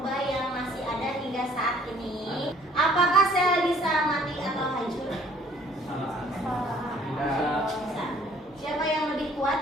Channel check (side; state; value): both; normal; correlation 0.57